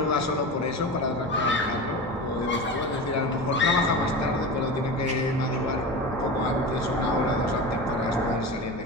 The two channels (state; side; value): normal; both; correlation 0.28